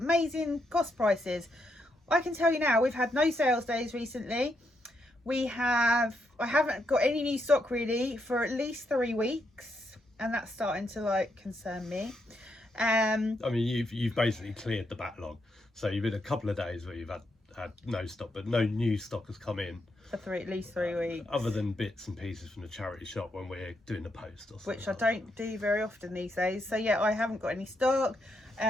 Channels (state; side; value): normal; both; correlation 0.80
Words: amazing cost prices. I can tell you now, we've had no sales days recently. I haven't got any new stock really for at least 3 weeks, and that's starting to like concern me. I mean, you've basically cleared the backlog, so you've had a couple of days where you've had no stock, but no new stock has come in for at least 3 weeks, other than bits and pieces from the charity shop when we're doing the post or something, which I don't do very often these days. So yeah, I haven't got any stock.